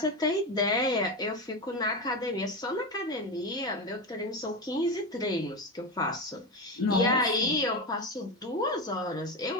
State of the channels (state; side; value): normal; both; correlation 0.18